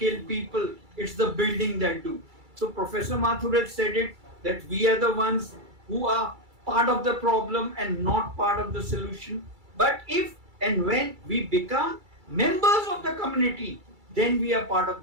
people. It's the building that do. So Professor Mathur said it, that we are the ones who are part of the problem and not part of the solution. But if and when we become members of the community, then we are part of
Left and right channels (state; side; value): late; left; 2.3 ms